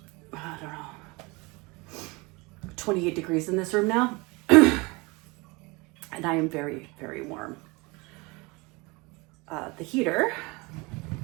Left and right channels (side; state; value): left; quieter; 25.9 dB